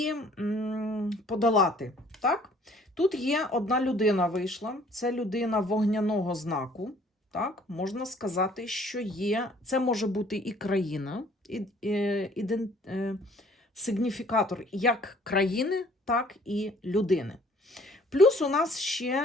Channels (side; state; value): both; normal; correlation 0.57